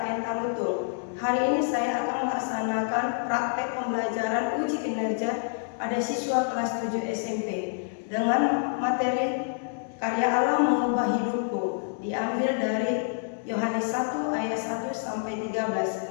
Tarutung. Hari ini saya akan melaksanakan praktek pembelajaran uji kinerja pada siswa kelas 7 SMP dengan materi karya Allah mengubah hidupku, diambil dari Yohanes 1 ayat 1 sampai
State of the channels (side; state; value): right; silent; digital silence